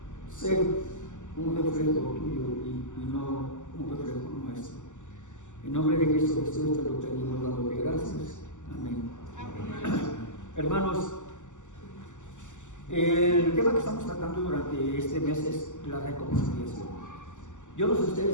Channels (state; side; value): late; right; 0.85 ms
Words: ser un reflejo tuyo y no un reflejo nuestro. En nombre de Cristo Jesús te lo pedimos dándote gracias. Amén. Hermanos, el tema que estamos tratando durante este mes es la reconciliación. Yo no sé